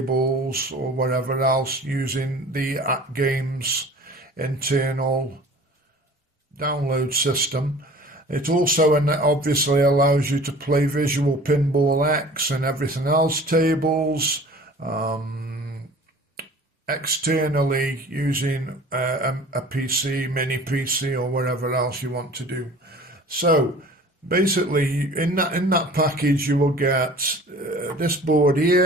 or whatever else using the AtGames internal download system. It also obviously allows you to play Visual Pinball X and everything else tables externally using a PC, mini PC or whatever else you want to do. So basically, in that package, you will get this board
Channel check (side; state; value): both; normal; correlation 0.45